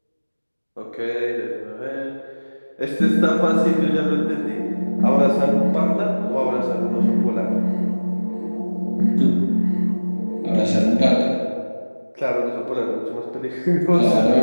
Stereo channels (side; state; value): both; inverted; correlation -1.00